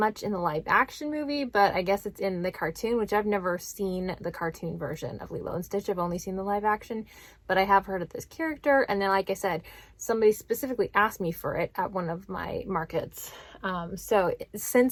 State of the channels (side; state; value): both; identical; correlation 1.00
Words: in the live action movie, but I guess it's in the cartoon, which I've never seen the cartoon version of Lilo and Stitch. I've only seen the live action, but I have heard of this character. And then, like I said, somebody specifically asked me for it at one of my markets. So